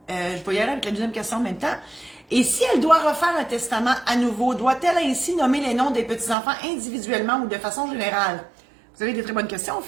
Je vais y aller avec la deuxième question en même temps. Et si elle doit refaire un testament à nouveau, doit-elle ainsi nommer les noms des petits-enfants individuellement ou de façon générale? Vous avez des très bonnes questions,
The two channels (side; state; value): left; drops out; at 6.4 s